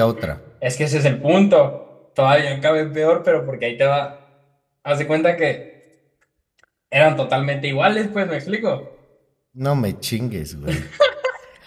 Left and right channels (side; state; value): both; identical; correlation 1.00